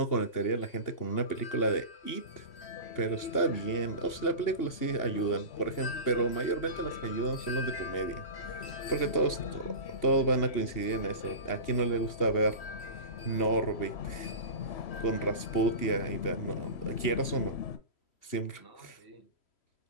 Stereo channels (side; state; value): right; late; 2.8 ms